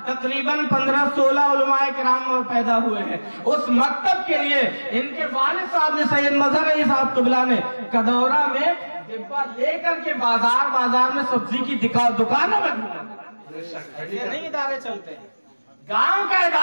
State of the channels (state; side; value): inverted; both; correlation -1.00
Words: तकरीबन 15-16 उलमाए किराम पैदा हुए हैं, उस मकतब के लिए इनके वालिद साहब ने, सैयद मजहर अली साहब क़िबला ने, कदौरा में डिब्बा लेकर के बाजार में सब्जी की दुकानों में घूमा। नहीं इदारे चलते हैं, गांव का